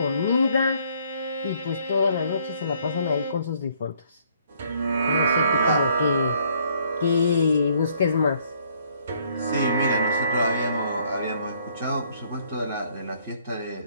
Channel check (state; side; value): inverted; both; correlation -0.65